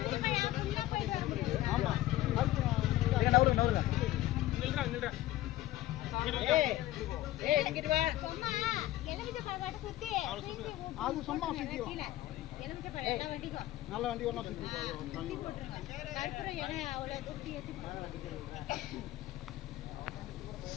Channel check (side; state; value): right; quieter; 15.3 dB